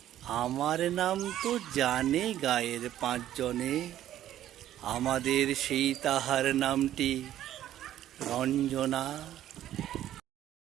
আমার নাম তো জানে গায়ের 5 জনে, আমাদের সেই তাহার নামটি রঞ্জনা।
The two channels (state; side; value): quieter; left; 12.3 dB